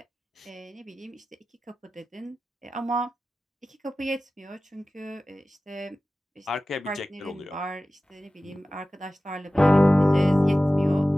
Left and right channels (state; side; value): normal; both; correlation 0.96